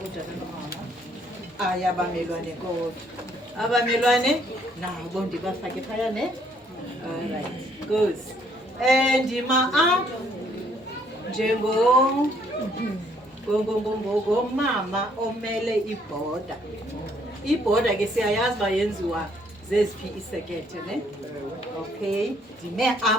utata nomama ayabamelwane kodwa abamelwane nabo ndibafake phaya ne alright good ndima apha ngomama omele ibhoda. Ibhoda ke siyayazi uba yenziwa zeziphi isekethe ne? Okay, ndime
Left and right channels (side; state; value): both; normal; correlation 0.66